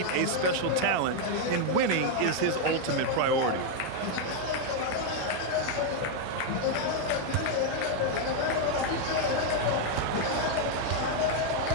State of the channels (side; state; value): both; different; correlation 0.01